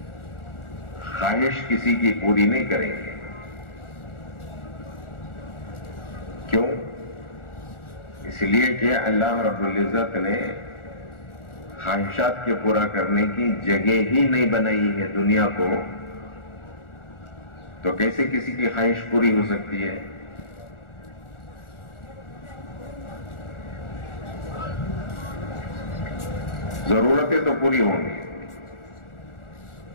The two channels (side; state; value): right; late; 1.4 ms